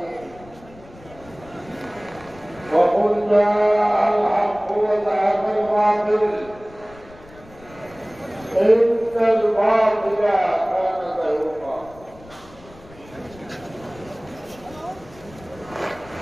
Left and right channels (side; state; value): left; noise; rumble, 22 dB below the sound